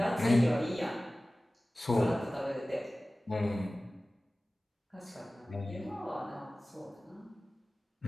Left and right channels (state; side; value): normal; both; correlation 0.97